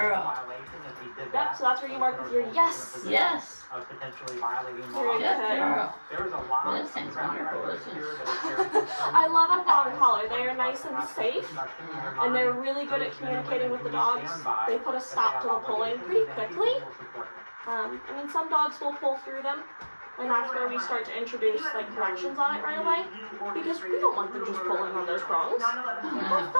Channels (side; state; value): both; inverted; correlation -1.00